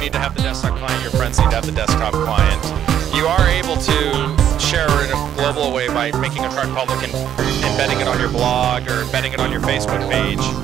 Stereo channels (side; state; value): left; quieter; 10.1 dB